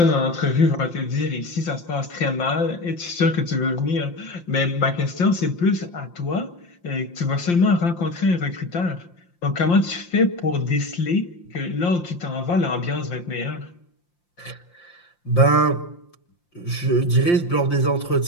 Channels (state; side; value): late; right; 5.7 ms